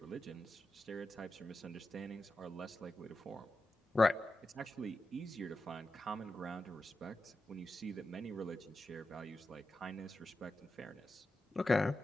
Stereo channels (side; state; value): both; normal; correlation 0.91